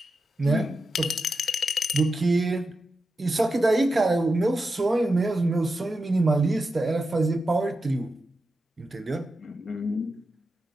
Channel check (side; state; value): both; normal; correlation 0.89